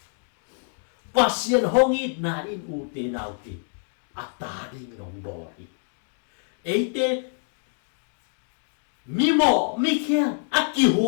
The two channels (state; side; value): silent; right; 61 dB below the other